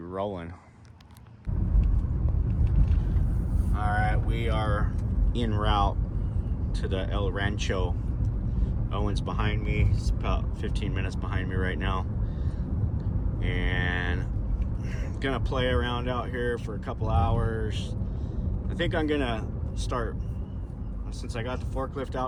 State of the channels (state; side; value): identical; both; correlation 1.00